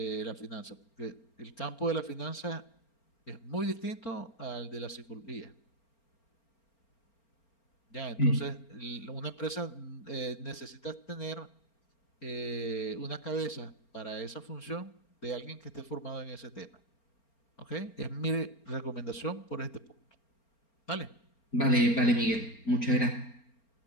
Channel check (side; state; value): right; late; 4.4 ms